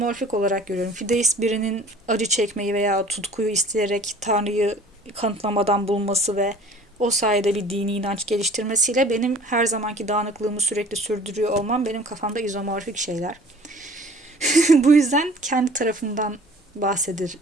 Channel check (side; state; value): both; normal; correlation 0.49